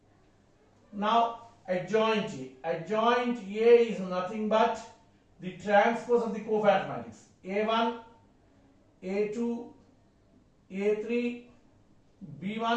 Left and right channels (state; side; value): identical; both; correlation 1.00